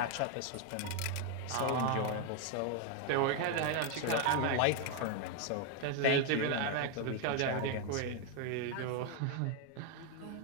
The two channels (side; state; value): both; different; correlation 0.01